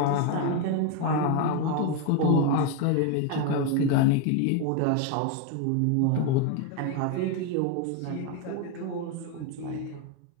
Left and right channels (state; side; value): different; both; correlation 0.02